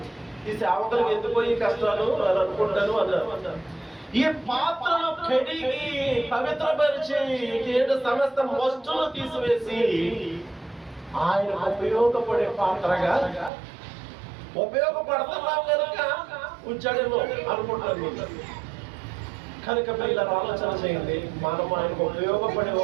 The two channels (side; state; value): left; drops out; at 13.5 s